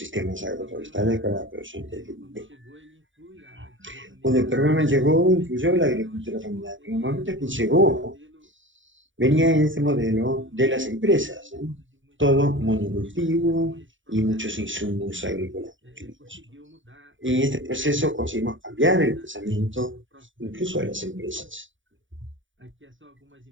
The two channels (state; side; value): late; left; 0.56 ms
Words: agroforestales para la producción de Dendé. Cuando el programa llegó, incluyó la agricultura familiar. En el momento que llegó, venía en este modelo de las empresas, ¿eh? Todo monocultivo y muchos insumos agrícolas. Y en este proceso conseguimos cambiar el pensamiento incluso de las empresas.